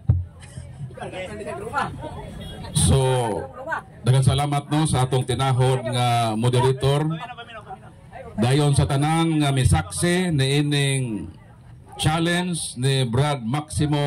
So, daghang salamat no sa atong tinahod nga moderator. Dayon sa tanan nga misaksi ni ining challenge ni Brad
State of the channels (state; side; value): identical; both; correlation 1.00